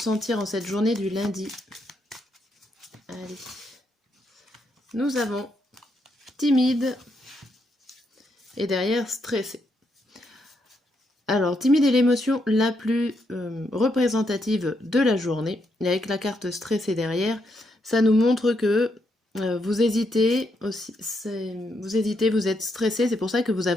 en cette journée du lundi. Allez. Nous avons timide et derrière stressé. Alors, timide est l'émotion la plus représentative de la journée. Et avec la carte stressée derrière, ça nous montre que vous hésitez aussi, vous êtes stressé, c'est pour ça que vous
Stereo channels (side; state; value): both; normal; correlation 0.78